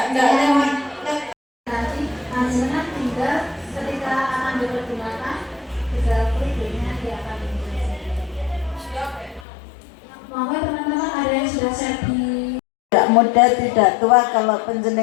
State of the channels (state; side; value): drops out; right; at 9.5 s